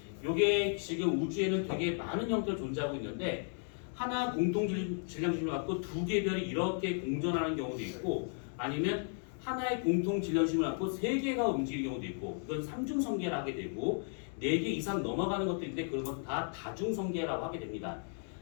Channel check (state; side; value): silent; right; 55 dB below the other